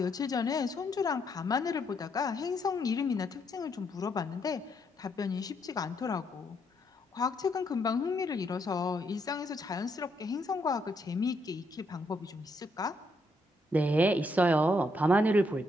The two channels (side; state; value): both; normal; correlation 0.75